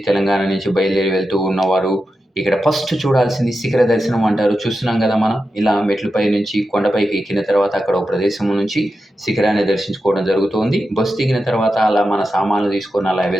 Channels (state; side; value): normal; both; correlation 0.90